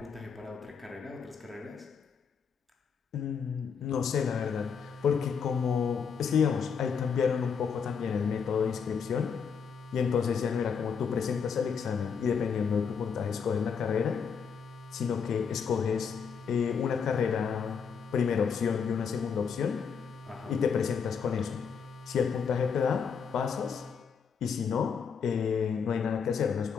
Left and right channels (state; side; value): quieter; right; 6.4 dB